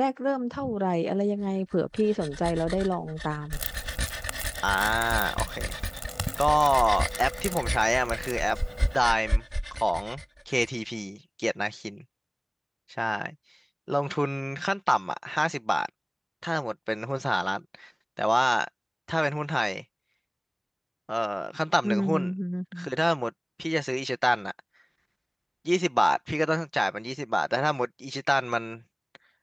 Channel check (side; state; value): both; identical; correlation 1.00